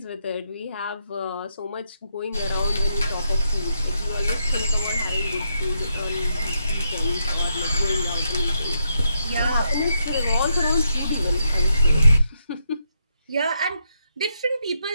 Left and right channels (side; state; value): both; inverted; correlation -0.80